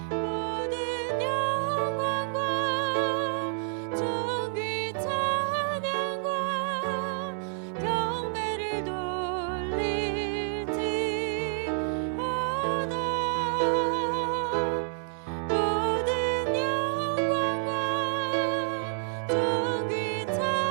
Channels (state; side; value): silent; left; digital silence